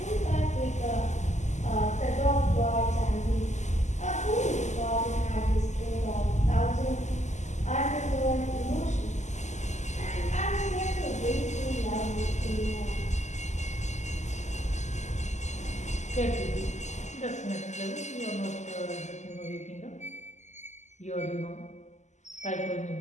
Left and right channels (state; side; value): late; right; 0.34 ms